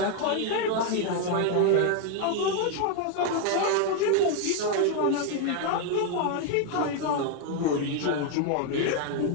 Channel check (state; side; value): different; both; correlation 0.01